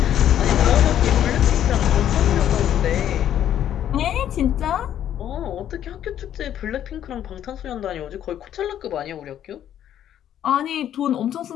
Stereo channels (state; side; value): quieter; right; 10.7 dB